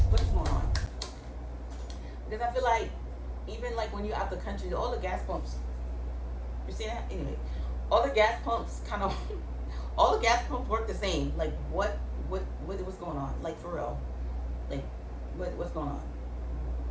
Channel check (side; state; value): both; identical; correlation 1.00